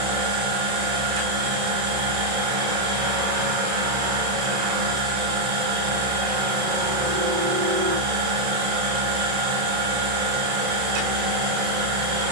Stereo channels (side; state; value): left; late; 31 ms